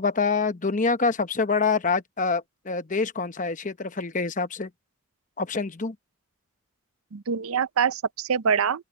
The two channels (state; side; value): normal; both; correlation -0.18